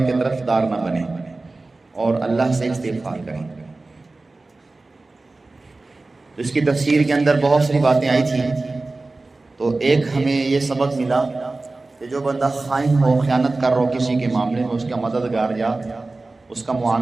کی طرف دار نہ بنیں اور اللہ سے استغفار کریں۔ اس کی تفسیر کے اندر بہت ساری باتیں آئی تھیں، تو ایک ہمیں یہ سبق ملا کہ جو بندہ خائن ہو، خیانت کر رہا ہو کسی کے معاملے میں، اس کا مددگار یا اس کا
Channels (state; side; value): quieter; left; 3.3 dB